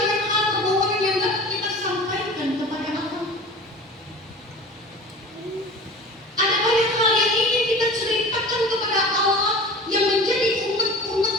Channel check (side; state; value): both; normal; correlation 0.38